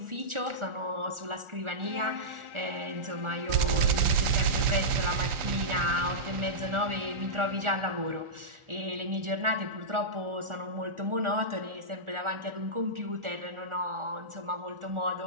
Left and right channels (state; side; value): late; left; 1.4 ms